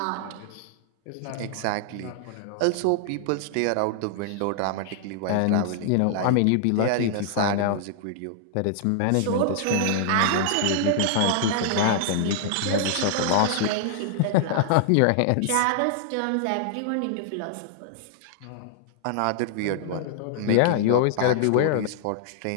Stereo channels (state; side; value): different; both; correlation -0.01